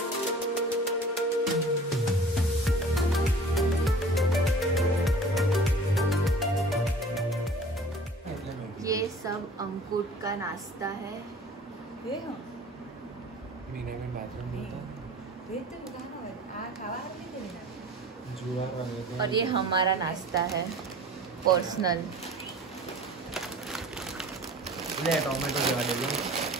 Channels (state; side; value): normal; both; correlation 0.45